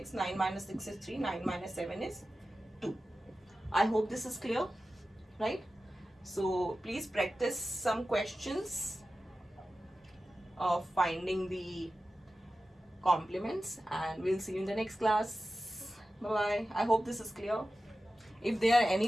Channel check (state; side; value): normal; both; correlation 0.94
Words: 9 minus 6 is 3, 9 minus 7 is 2. I hope this is clear, right? So please practice some questions of finding the complements, and we'll see you in the next class. Bye bye. I hope this is clear. If there are